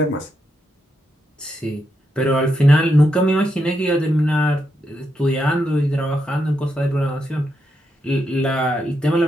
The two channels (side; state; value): both; normal; correlation 0.82